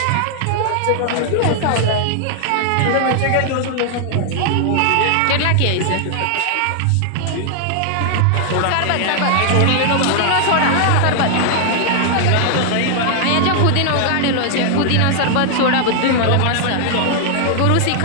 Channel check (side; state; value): both; different; correlation 0.00